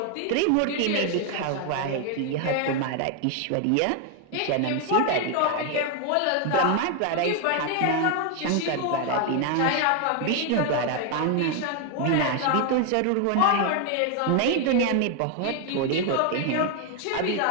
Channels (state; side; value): different; both; correlation 0.01